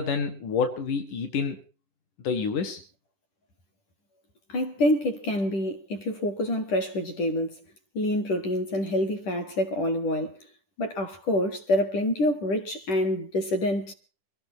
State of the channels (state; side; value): late; right; 10 ms